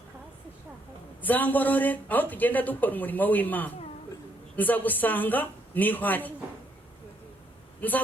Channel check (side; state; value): both; normal; correlation 0.72